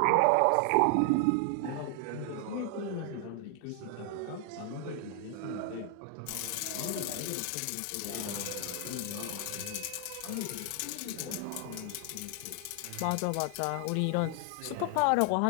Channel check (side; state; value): both; different; correlation 0.00